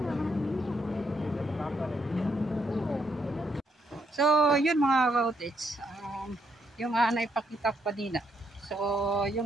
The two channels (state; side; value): normal; both; correlation 0.75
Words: So, yun mga ka-cottage. Yung naipakita ko kanina. So,